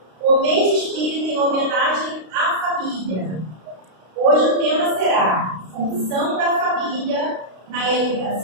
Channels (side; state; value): left; late; 32 ms